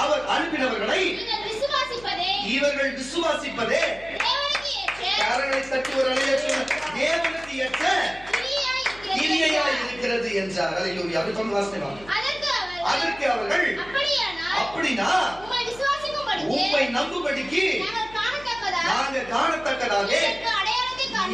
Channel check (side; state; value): left; noise; hum, 21 dB below the sound